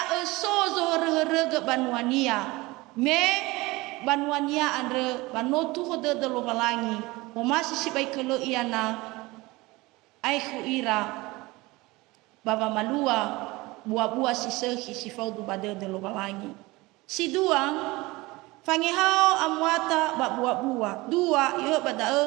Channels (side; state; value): left; quieter; 21.8 dB